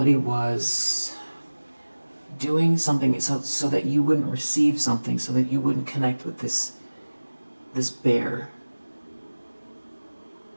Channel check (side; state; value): both; inverted; correlation -1.00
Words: was doing something so that you wouldn't receive something, so that you wouldn't connect with this bear.